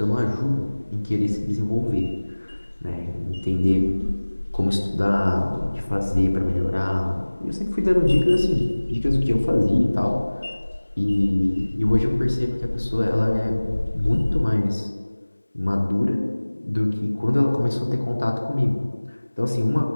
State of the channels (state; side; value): inverted; both; correlation -1.00